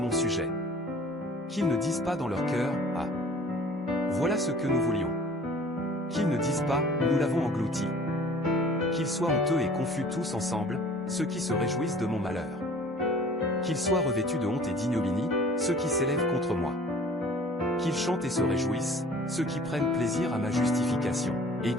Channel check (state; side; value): normal; both; correlation 0.49